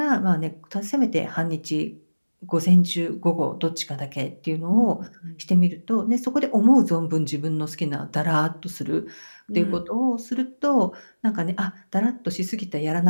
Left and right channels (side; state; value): both; inverted; correlation -1.00